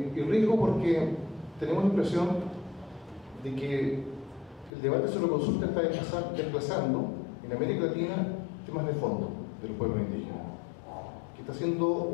riesgo porque tenemos la impresión de que el debate sobre consulta está desplazando en América Latina temas de fondo de los pueblos indígenas, que está siendo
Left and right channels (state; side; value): drops out; right; at 4.7 s